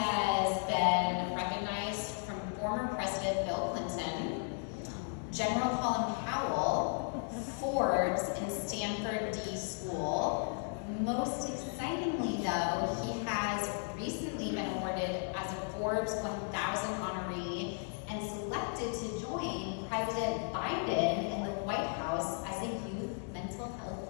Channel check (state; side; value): silent; right; 54 dB below the other